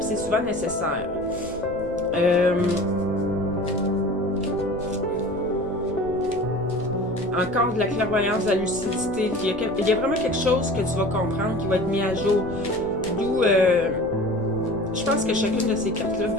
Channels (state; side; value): noise; right; rumble, 16 dB below the sound